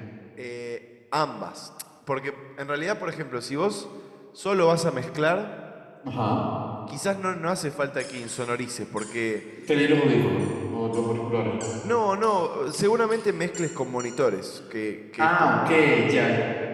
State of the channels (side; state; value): both; identical; correlation 1.00